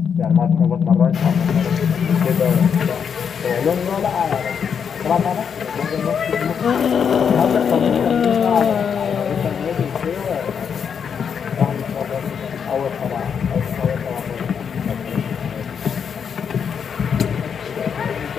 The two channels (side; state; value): right; quieter; 7.1 dB